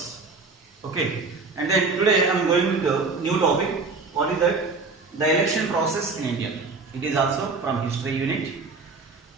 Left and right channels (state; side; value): quieter; left; 4.1 dB